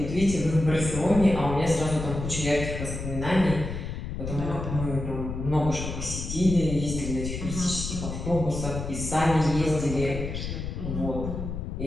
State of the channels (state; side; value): noise; left; rumble, 6 dB below the sound